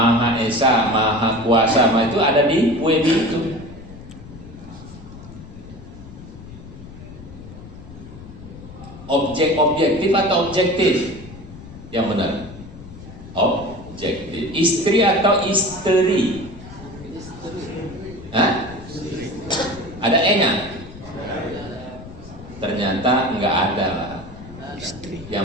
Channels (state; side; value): noise; left; rumble, 16 dB below the sound